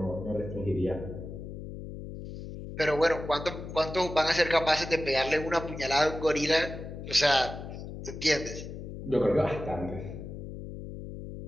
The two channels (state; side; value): noise; left; hum, 9 dB below the sound